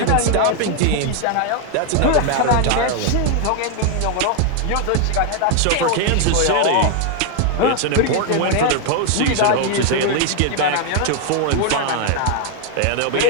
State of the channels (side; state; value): both; different; correlation 0.00